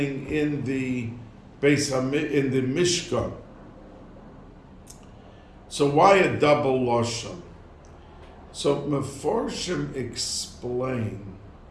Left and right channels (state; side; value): identical; both; correlation 1.00